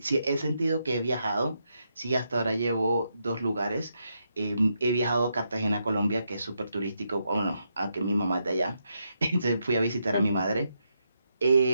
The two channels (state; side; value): inverted; both; correlation -0.81